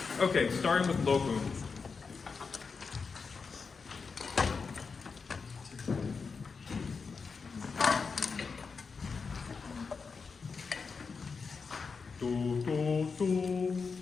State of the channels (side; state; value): right; quieter; 5.1 dB